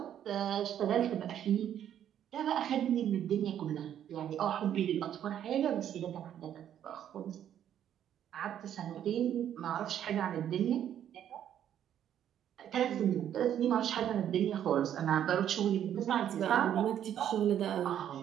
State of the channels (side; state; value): left; quieter; 10.2 dB